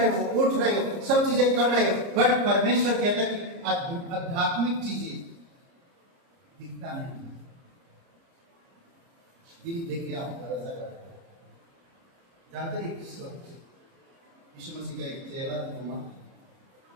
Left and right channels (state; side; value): late; left; 30 ms